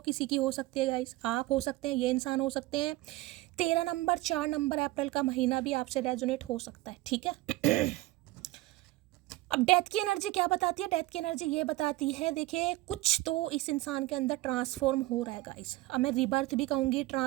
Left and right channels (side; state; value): left; quieter; 18.6 dB